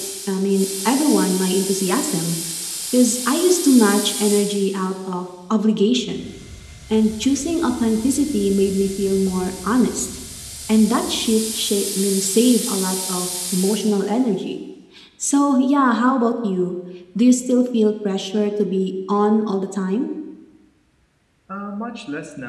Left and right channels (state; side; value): identical; both; correlation 1.00